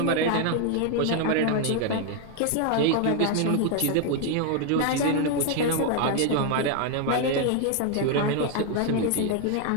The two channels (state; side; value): different; both; correlation 0.01